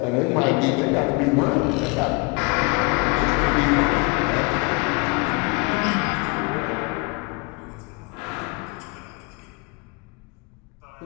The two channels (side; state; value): right; quieter; 29.4 dB